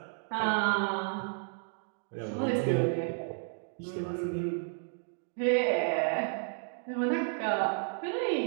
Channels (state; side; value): silent; left; 56 dB below the other